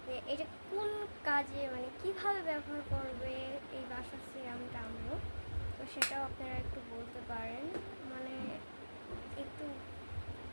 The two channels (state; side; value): inverted; both; correlation -1.00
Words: যে এটা কোন কাজে, মানে কিভাবে ব্যবহার করবে এই বাসার সিরামটা আমরা। তো সেটাও আপনারা একটু বলতে পারেন, মানে একটু